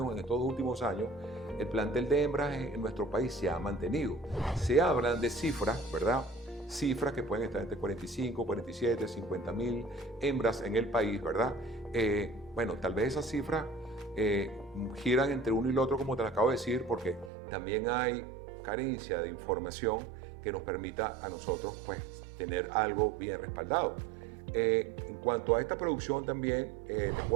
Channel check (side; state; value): left; drops out; at 17.3 s